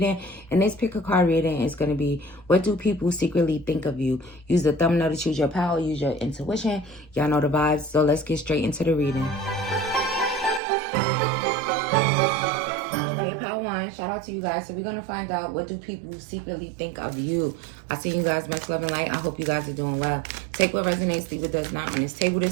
And this pick a card reading is going to be, what do people secretly think of you? Use the thumbnail to choose your power, use your intuition. Y'all know the vibes, so let's get straight into the reading. Okay, power one, shout out to you guys. So we're going to find out, what do people secretly think of you? I see you guys, much love and light. I hope you guys are doing well. Take what resonates, leave what does not on this table.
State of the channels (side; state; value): left; drops out; at 10.6 s